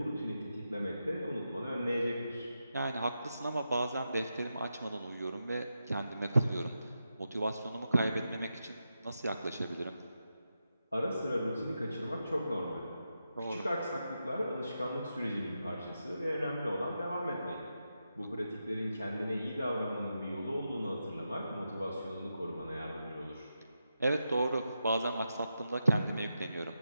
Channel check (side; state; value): both; inverted; correlation -0.88